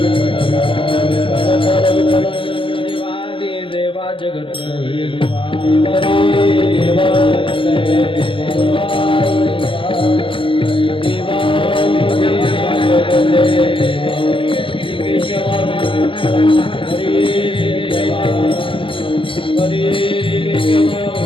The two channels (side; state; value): right; late; 0.25 ms